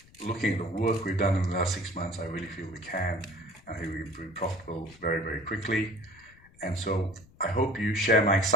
looking at the work we've done in the last 6 months, I really feel we can. I think we can be profitable very, very quickly. And so I hope you share my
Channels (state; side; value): noise; left; rumble, 26 dB below the sound